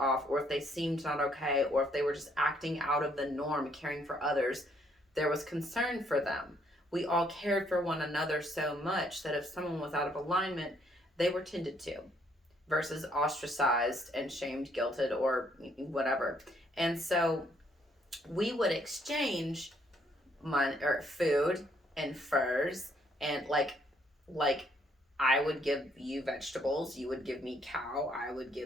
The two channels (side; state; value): both; normal; correlation 0.69